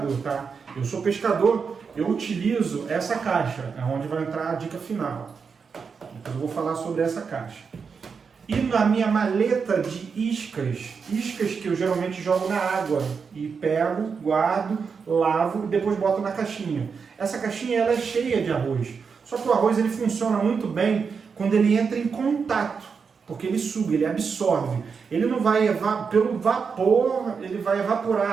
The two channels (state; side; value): quieter; left; 5.7 dB